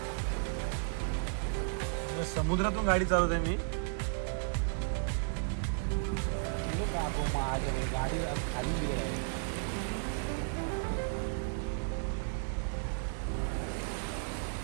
समुद्रातून गाडी चालवते मी.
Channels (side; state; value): left; silent; digital silence